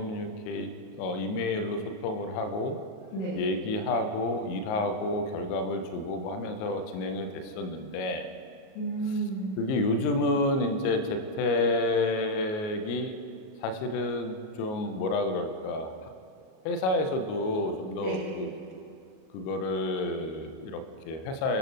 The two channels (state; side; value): late; right; 38 ms